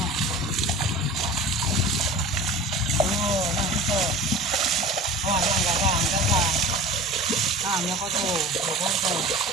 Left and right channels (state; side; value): normal; both; correlation 0.37